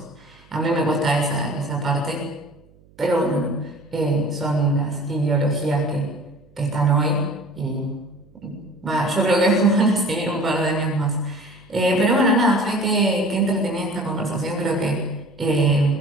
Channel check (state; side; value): noise; right; hum, 29 dB below the sound